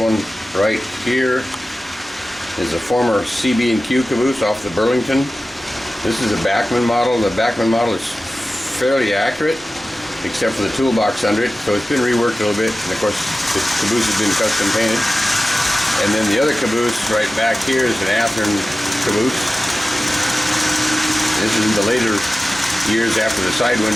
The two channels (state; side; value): normal; both; correlation 0.95